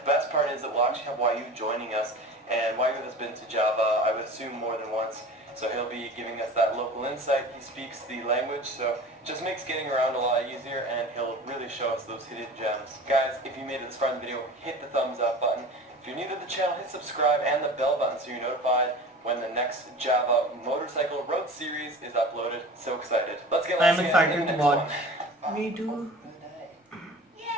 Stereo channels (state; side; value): normal; both; correlation 0.37